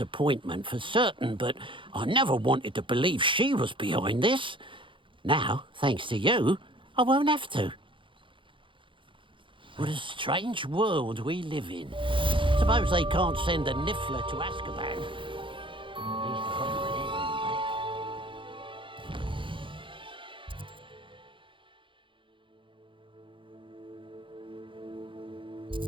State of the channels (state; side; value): late; left; 0.25 ms